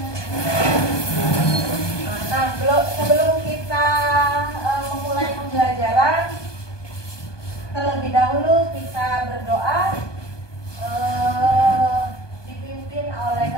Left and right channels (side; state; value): right; late; 1.2 ms